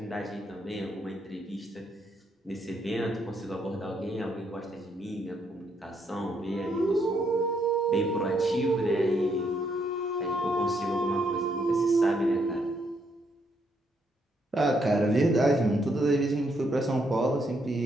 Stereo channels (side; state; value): both; normal; correlation 0.74